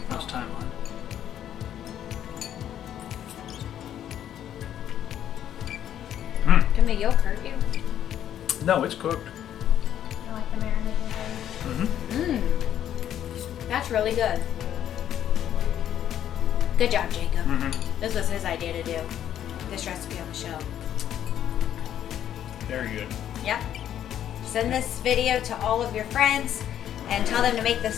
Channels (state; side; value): quieter; right; 10.5 dB